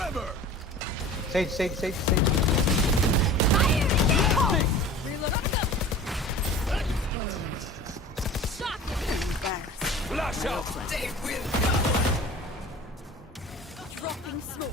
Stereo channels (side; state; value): both; normal; correlation 0.40